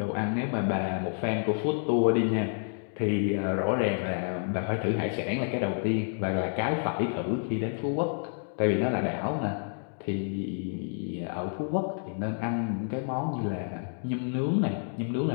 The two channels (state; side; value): silent; right; 58 dB below the other